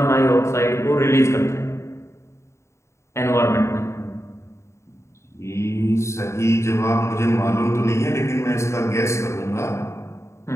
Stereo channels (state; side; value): late; right; 0.14 ms